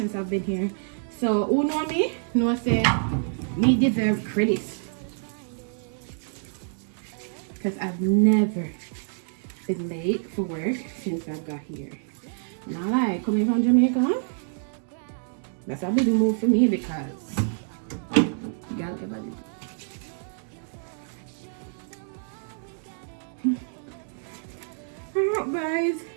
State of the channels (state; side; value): silent; left; digital silence